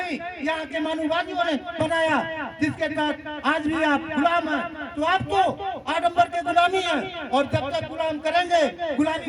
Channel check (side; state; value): both; identical; correlation 1.00